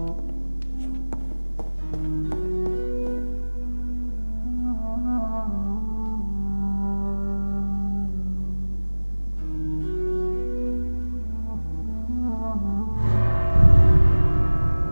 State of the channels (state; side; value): inverted; both; correlation -1.00